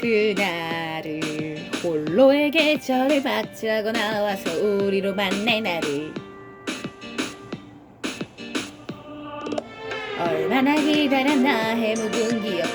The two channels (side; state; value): both; identical; correlation 1.00